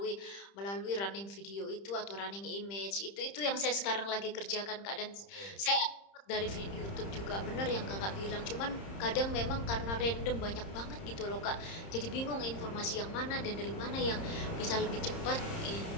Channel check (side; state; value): right; late; 30 ms